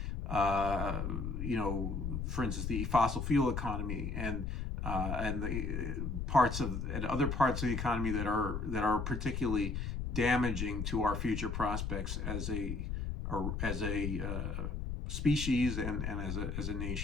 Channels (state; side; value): noise; left; rumble, 3 dB below the sound